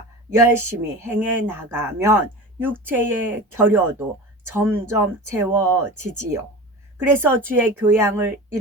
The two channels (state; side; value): normal; both; correlation 0.32